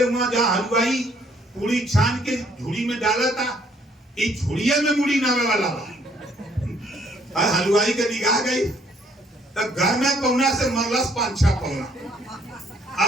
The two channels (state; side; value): normal; both; correlation 0.65